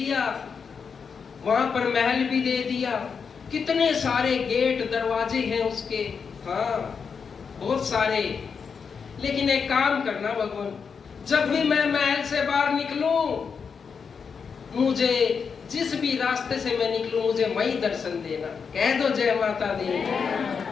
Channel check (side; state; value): right; quieter; 6.0 dB